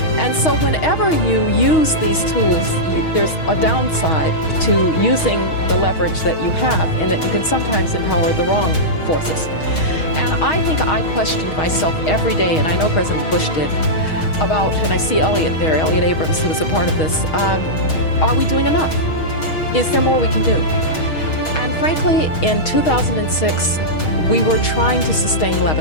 And so whenever you use these tools, there's a downside to using the leverage that you have, in that you can sometimes empower the wrong forces. And I think I questioned myself every day, and I know President Bush did, about, and I see Elliot there, Elliot Abrams, who was a part of this, are we doing enough? Is there more we can do? And frankly, in 2006, we were trying to sustain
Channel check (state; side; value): late; right; 6.3 ms